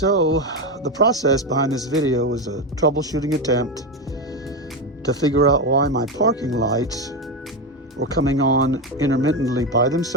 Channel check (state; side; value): normal; both; correlation 0.13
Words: the process behind this video was a troubleshooting attempt to figure out why my parking lights were coming on intermittently by